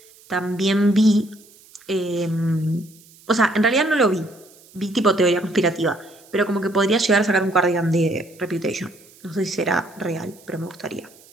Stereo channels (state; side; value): noise; right; hiss, 26 dB below the sound